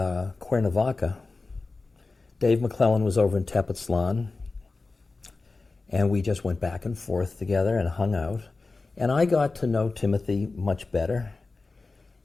Cuernavaca. Dave McClellan was over in Tepoztlan, and we just went back and forth together and hung out. And I got to know Timothy much better.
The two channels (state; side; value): quieter; right; 3.7 dB